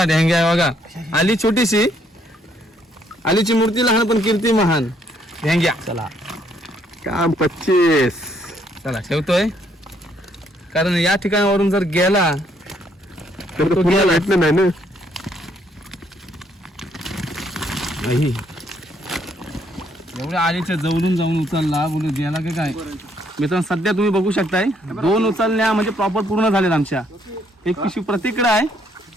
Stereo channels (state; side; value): normal; both; correlation 0.69